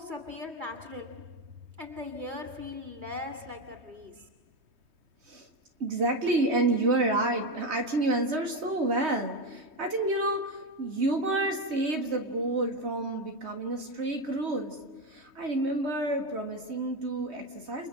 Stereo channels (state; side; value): late; left; 3.2 ms